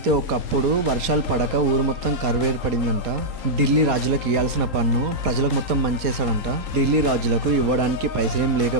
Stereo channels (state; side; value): late; left; 4.2 ms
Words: ఒకప్పుడు వర్షాలు పడక ఊరు మొత్తం కరువు ఏర్పడిందంట. ఢిల్లీ రాజులకు ఇవ్వాల్సిన పన్ను ప్రజలకు మొత్తం పంచేశాడంట. ఢిల్లీ రాజులకు ఇవ్వడానికి పైసలేం